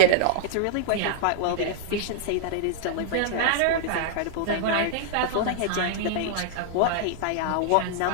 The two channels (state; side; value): different; both; correlation -0.01